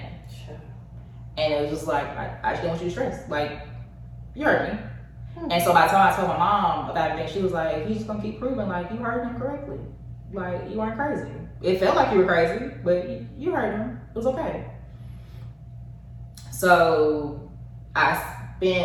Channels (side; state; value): both; identical; correlation 1.00